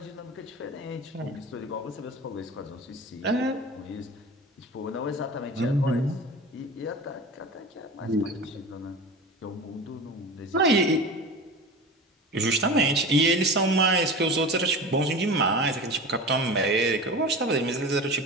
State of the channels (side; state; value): both; normal; correlation 0.32